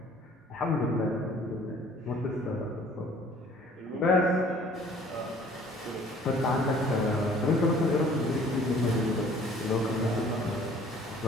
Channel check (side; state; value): both; normal; correlation 0.54